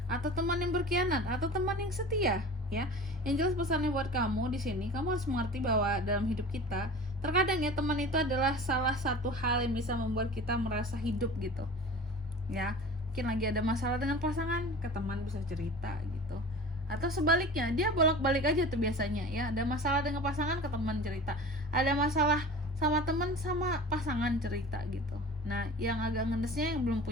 atau teman yang berkhianat, atau teman yang setia ya? Yang jelas pesannya buat kamu di sini, kamu harus mengerti bahwa dalam hidup kita terkadang ya teman itu adalah salah satu hal yang bisa membuat kita merasa hidup gitu ya. Mungkin lagi ada masalah dengan pasangan, ke teman bisa cerita gitu, atau sebaliknya dia bolak-balik aja tuh biasanya ya, ada masalah dengan pasangan ke teman cerita, ada masalah sama teman sama pasangan cerita gitu. Nah yang agak ngedesnya yang belum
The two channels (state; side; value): normal; both; correlation 0.38